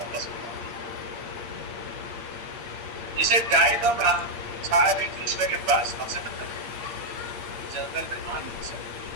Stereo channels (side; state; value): left; late; 8.6 ms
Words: बुलाते। जैसे गाय का नाम छाया में कृष्ण के पास हमसे तक जंगल में मान नहीं सकते,